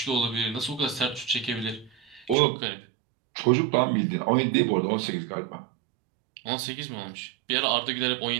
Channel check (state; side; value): drops out; left; at 2.4 s